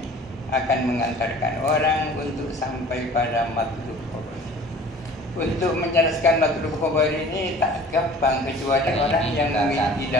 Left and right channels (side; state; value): both; normal; correlation 0.46